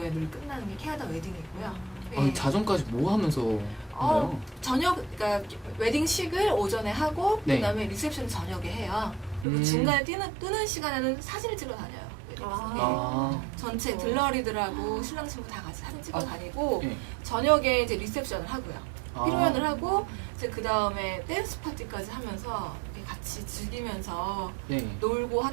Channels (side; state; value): left; drops out; at 9.5 s